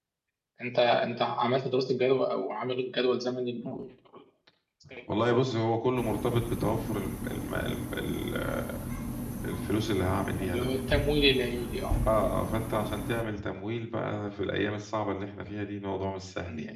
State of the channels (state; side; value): identical; both; correlation 1.00